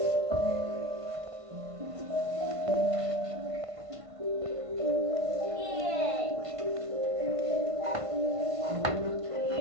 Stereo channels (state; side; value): late; left; 1.5 ms